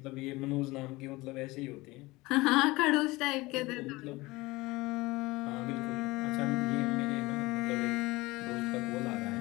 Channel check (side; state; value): right; quieter; 21.3 dB